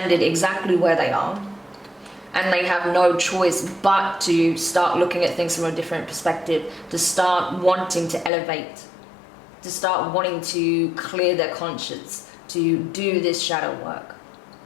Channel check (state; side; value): drops out; right; at 8.3 s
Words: exactly where they are, and they have no choice but to start looking at things from a different perspective, to start wanting to elevate, to start wanting to clear their conscience, to do this shadow work.